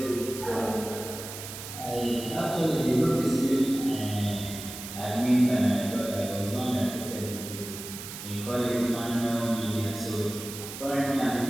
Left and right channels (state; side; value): noise; right; hiss, 10 dB below the sound